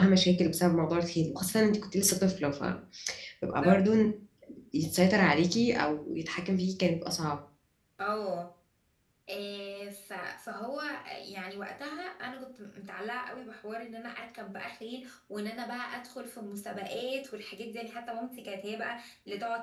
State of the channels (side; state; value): both; identical; correlation 1.00